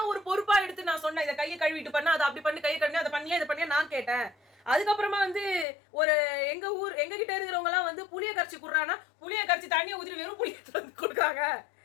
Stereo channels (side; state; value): right; drops out; at 5.7 s